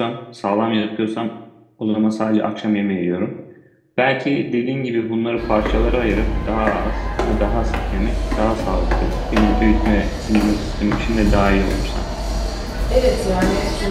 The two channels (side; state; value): both; identical; correlation 1.00